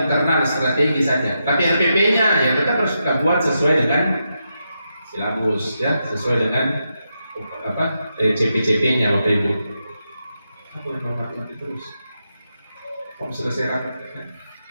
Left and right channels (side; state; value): both; inverted; correlation -0.85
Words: internal strategi saja. Tapi RPP-nya ya tetap harus kita buat sesuai dengan silabus ya, sesuai dengan CP-CP-nya Bapak Ibu. Aku yang mati terus. Om selesai rapat.